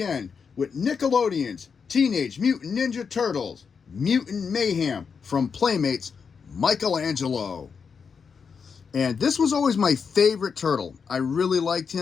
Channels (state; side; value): quieter; right; 6.0 dB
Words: with Nickelodeon's Teenage Mutant Ninja Turtles, Mutant Mayhem from Playmates, Michelangelo. And this was always my favorite turtle. I really liked